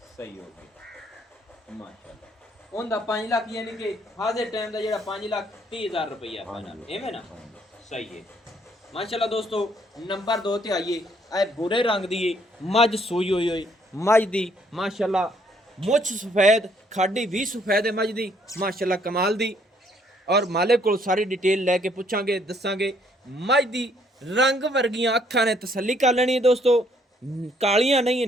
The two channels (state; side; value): normal; both; correlation 0.67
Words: सही हो गई माशाल्लाह। उनदा 5 लाख यानी कि हाजिर टाइम दा जेड़ा 5,30,000 रुपया फाइनल एवें ना ਸਹੀ ਹੈ ਮਾਸ਼ਾਅੱਲਾ ਦੋਸਤੋ। ਨੰਬਰ 2 ਤੇ ਆਈਏ, ਇਹ ਬੁਰੇ ਰੰਗ ਦੀ ਏ ਮੱਝ ਸੂਈ ਹੋਈ ਮੱਝ ਦੀ ਮਾਸ਼ਾਅੱਲਾ ਮੁੱਛ ਸਫੈਦ, ਖਾਡੀ ਵੀ ਸਫੈਦ ਹੈ ਮੱਝ ਦੀ ਮਾਸ਼ਾਅੱਲਾ ਕਮਾਲ ਦੀ। ਔਰ ਮਾਲਿਕ ਕੋਲ ਸਾਰੀ ਡਿਟੇਲ ਲੈ ਕੇ ਪੁੱਛਾਂਗੇ ਦੱਸਾਂਗੇ। ਮੱਝ ਦੀ ਰੰਗ ਵਰਗੀਆਂ ਅੱਖਾਂ ਨੇ ਤਸੱਲੀ ਕਰ ਲੈਣੀ ਹੈ ਦੋਸਤੋ, ਕਾਲੀਆਂ ਨਹੀਂ